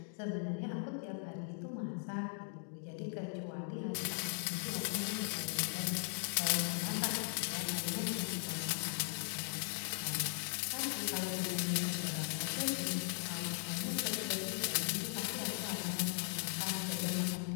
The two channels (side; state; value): right; silent; 52 dB below the other